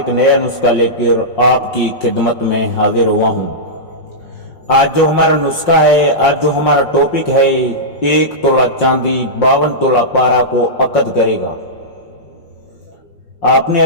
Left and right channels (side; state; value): right; late; 5.6 ms